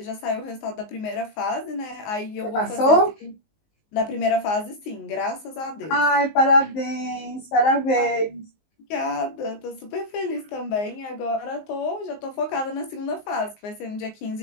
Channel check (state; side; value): late; right; 19 ms